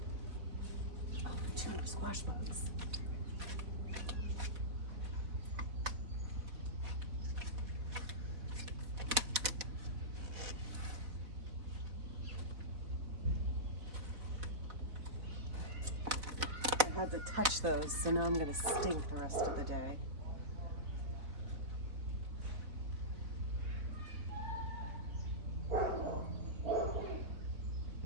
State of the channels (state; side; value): late; left; 4.0 ms